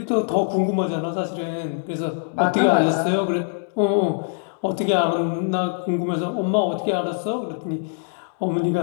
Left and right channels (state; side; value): silent; right; digital silence